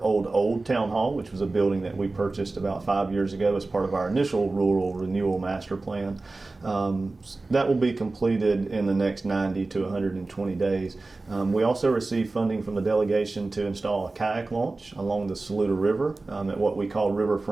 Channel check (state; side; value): quieter; left; 3.4 dB